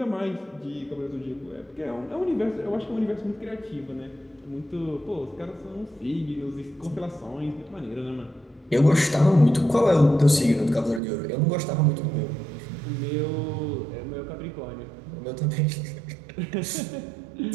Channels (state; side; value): drops out; left; at 11.0 s